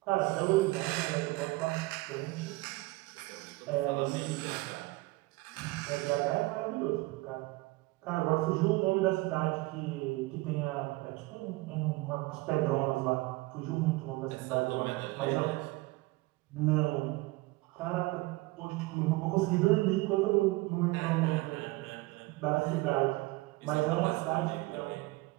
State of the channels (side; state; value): left; quieter; 21.6 dB